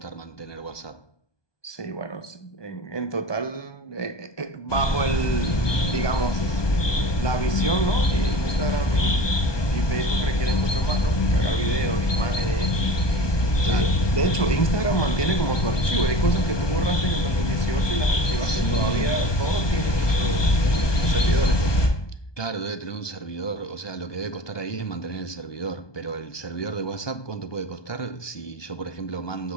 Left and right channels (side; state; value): right; late; 1.2 ms